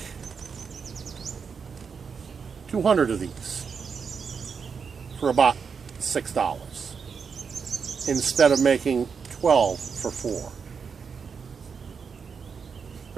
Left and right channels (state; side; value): quieter; left; 6.0 dB